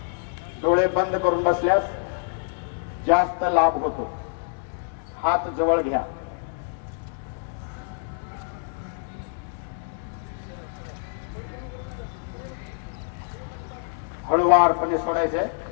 डोळे बंद करून बसल्यास जास्त लाभ होतो. हात जवळ घ्या. हळूवारपणे सोडायचे.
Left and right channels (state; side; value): silent; right; digital silence